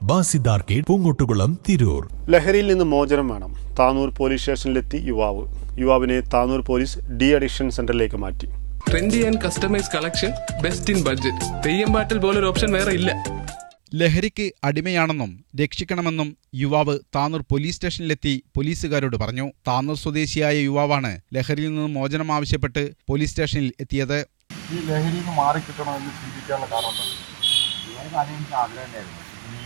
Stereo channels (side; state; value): left; silent; digital silence